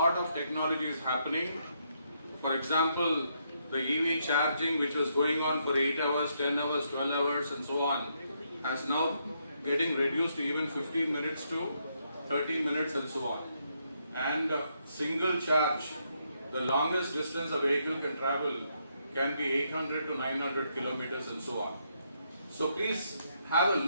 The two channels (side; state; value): both; inverted; correlation -0.76